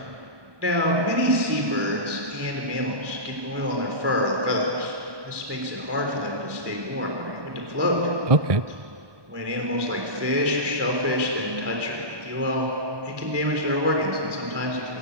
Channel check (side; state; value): left; late; 1.2 ms